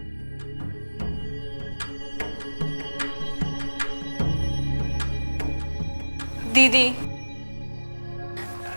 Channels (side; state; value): both; inverted; correlation -1.00